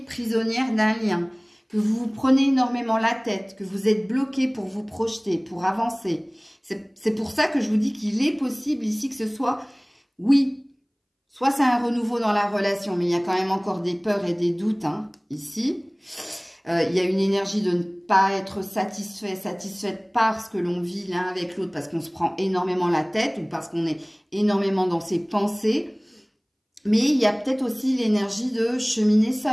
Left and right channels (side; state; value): both; identical; correlation 1.00